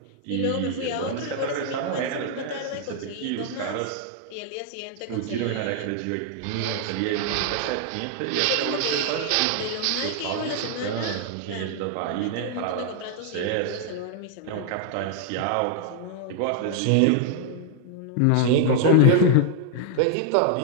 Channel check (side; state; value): both; different; correlation 0.00